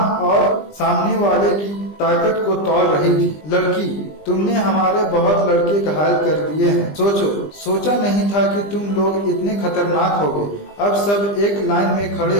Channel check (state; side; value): late; right; 20 ms